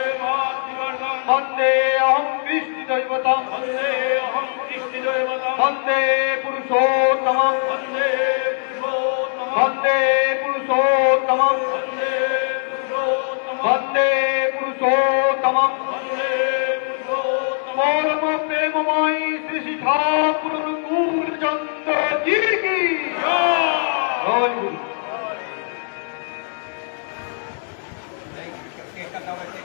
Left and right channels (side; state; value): right; silent; 65 dB below the other